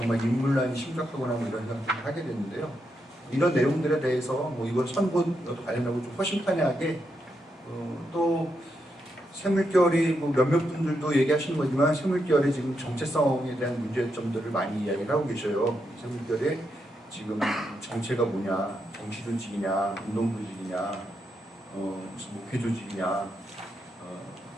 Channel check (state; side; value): normal; both; correlation 0.82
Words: 인물난이 심각하구나 이런 생각을 하게 됐는데요. 이런 내용들에 대해서 이번 선거도 관련하고 좀 허심탄회하게 또 샘물결이 몇몇 분들도 얘기하시는 거지만 샘물결의 지금 정체성에 대한 문제점들을 많이 이야기를 하고 계셔요. 샘물결의 지금 정체가 뭐냐, 정치 조직이냐, 운동 조직이냐, 무슨 목회 조직이냐,